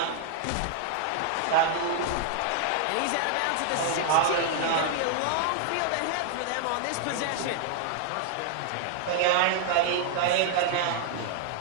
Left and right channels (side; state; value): both; different; correlation 0.00